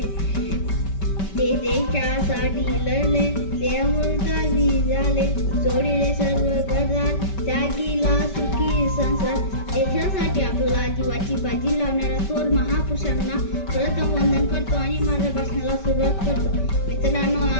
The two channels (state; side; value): late; right; 5.2 ms